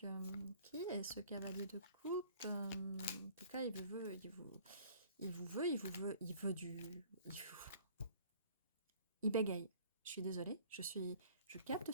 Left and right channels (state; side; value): inverted; both; correlation -0.52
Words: Qui est ce cavalier de coupe? En tout cas, il vous veut, il bégaye. Je suis désolée, je capte